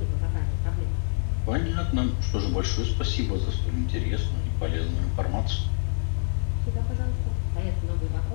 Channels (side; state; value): right; silent; 61 dB below the other